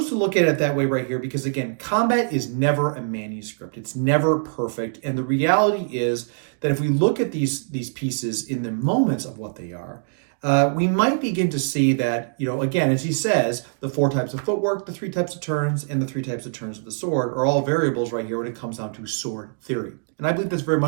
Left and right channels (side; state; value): left; silent; digital silence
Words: to look at it that way right here because, again, combat is never a manuscript. It's never perfect. And the reality is that if we look at these pieces in the moments of what they are, we might begin to see that, again, as he says, the 4 types of footwork, the 3 types of turns, and the 3 types of turns of the sword are all variables right here when it comes down to sword theory. And I believe that's very